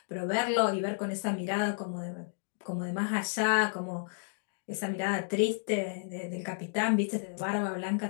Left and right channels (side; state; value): right; silent; digital silence